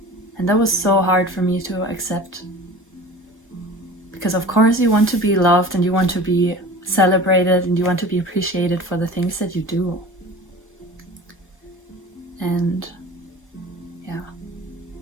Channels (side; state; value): both; normal; correlation 0.39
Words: And that was so hard for me to accept, because of course you want to be loved, and you want to be celebrated, and you want to be appreciated for the things that you do. And yeah,